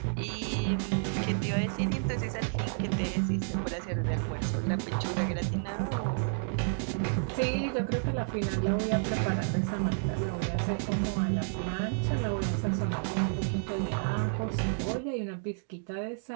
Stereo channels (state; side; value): silent; left; digital silence